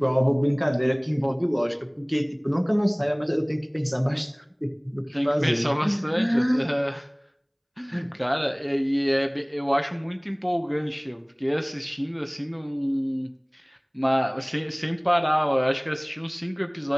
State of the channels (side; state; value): both; identical; correlation 1.00